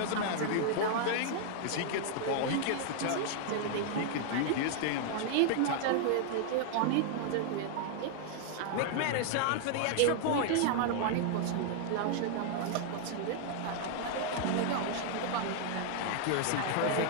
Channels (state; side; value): different; both; correlation 0.00